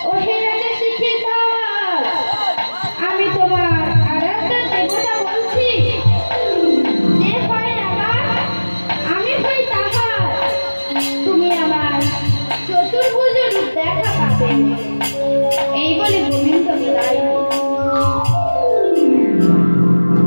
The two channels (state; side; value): inverted; both; correlation -1.00